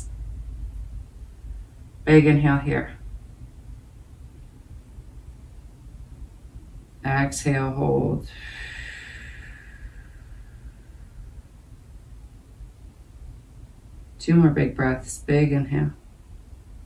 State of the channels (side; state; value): both; identical; correlation 1.00